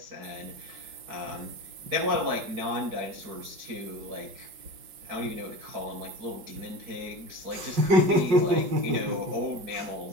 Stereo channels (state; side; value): late; left; 5.6 ms